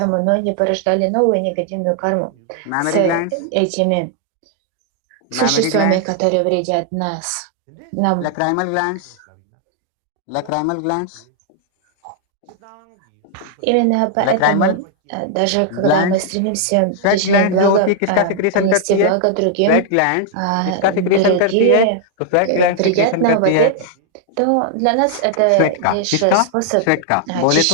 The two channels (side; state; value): both; different; correlation 0.00